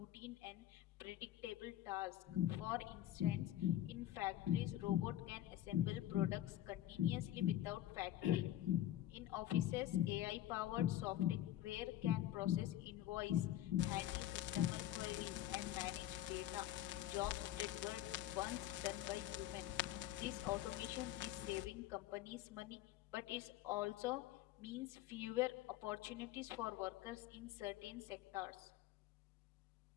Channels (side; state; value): right; quieter; 13.2 dB